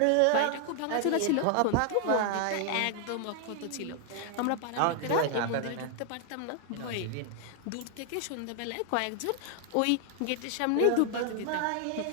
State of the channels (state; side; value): different; both; correlation 0.00